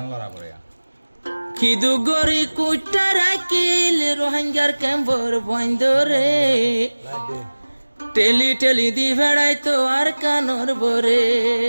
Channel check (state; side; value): inverted; both; correlation -1.00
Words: কি দুঃখ গরি কুটা রাখিল রোহিঙ্গার ক্যাম্পর বন্ধ রে টেলি টেলি দি ভেড়াই তো আর কানর বরে